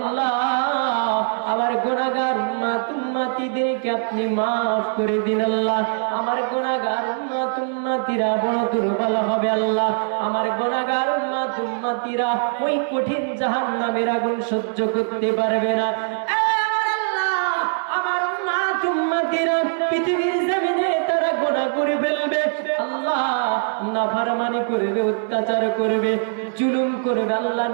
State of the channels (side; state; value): left; silent; digital silence